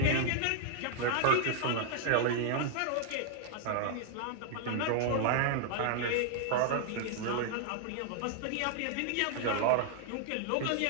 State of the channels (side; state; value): both; different; correlation 0.00